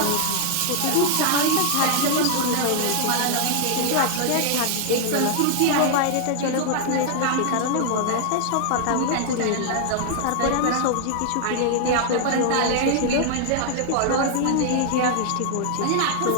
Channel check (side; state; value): both; different; correlation 0.00